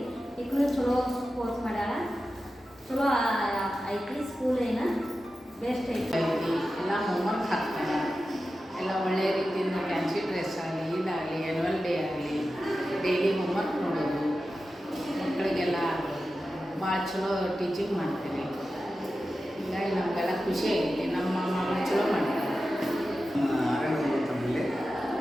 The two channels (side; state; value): both; normal; correlation 0.93